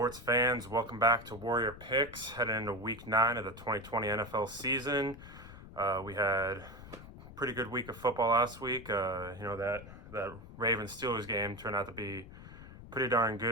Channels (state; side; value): noise; left; rumble, 16 dB below the sound